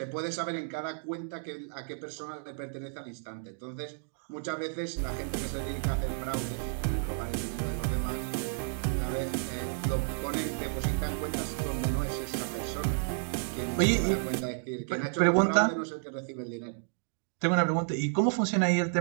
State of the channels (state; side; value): silent; left; digital silence